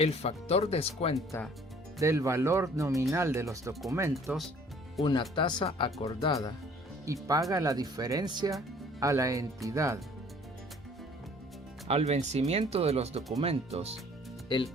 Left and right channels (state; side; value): normal; both; correlation 0.55